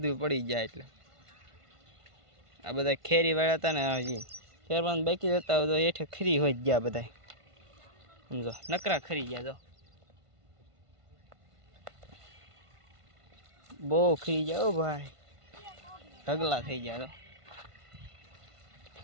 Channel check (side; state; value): left; late; 1.5 ms